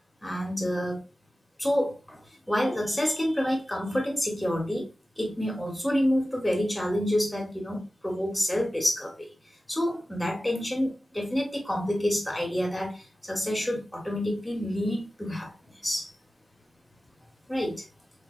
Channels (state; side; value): normal; both; correlation 0.95